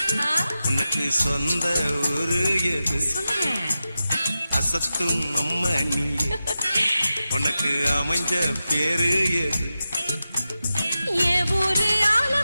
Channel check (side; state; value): both; inverted; correlation -0.92